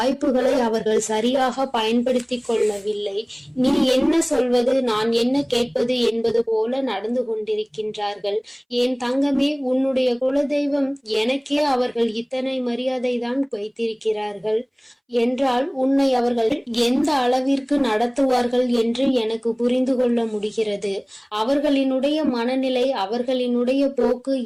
அவர்கள் சரியாக பயன்படுத்தி கொள்ளவில்லை. நீ என்ன சொல்வது, நான் என்ன கேட்பது என்பது போல நடந்து கொண்டிருக்கின்றார்கள். என் தங்கமே, உன்னுடைய குலதெய்வம் எனக்கே அவர்கள் இத்தனை மரியாதை தான் வைத்திருக்கிறார்கள் என்றால் உன்னை அவர்கள் எந்த அளவிற்கு நடத்துவார்கள் என்று எனக்கு புரிந்து கொள்ள முடிகிறது. அவர்களினுடைய மனநிலை, அவர்களினுடைய போக்கு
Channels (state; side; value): identical; both; correlation 1.00